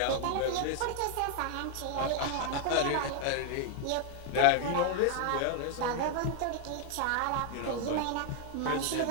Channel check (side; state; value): both; different; correlation 0.00